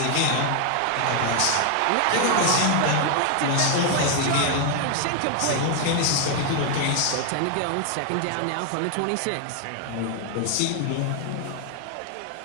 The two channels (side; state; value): both; different; correlation 0.00